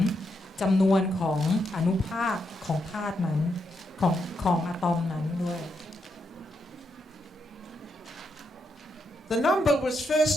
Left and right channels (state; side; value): normal; both; correlation 0.81